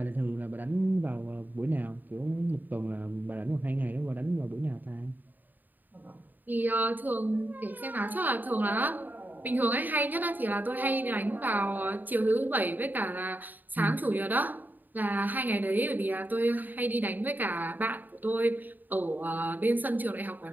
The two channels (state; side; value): late; left; 0.087 ms